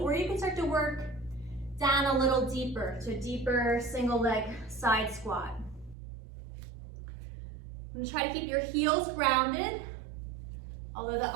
you can start to work down a little deeper to a deeper single leg side squat. And try to keep your heels grounded. Although the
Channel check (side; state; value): left; drops out; at 6.0 s